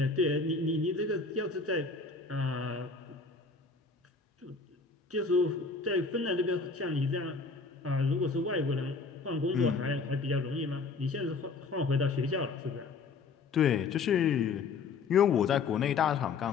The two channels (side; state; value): right; quieter; 4.5 dB